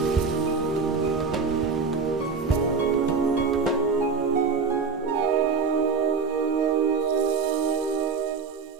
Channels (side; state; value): left; quieter; 5.1 dB